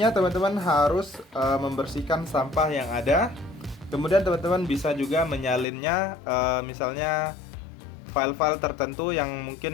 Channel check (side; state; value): right; drops out; at 5.7 s